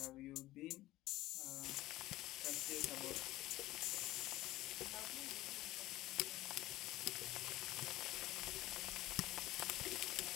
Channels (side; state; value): right; quieter; 16.5 dB